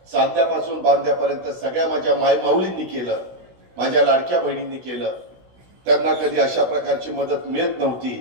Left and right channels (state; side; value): late; left; 16 ms